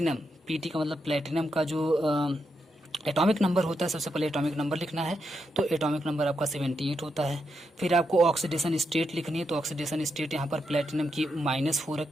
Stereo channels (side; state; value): both; normal; correlation 0.83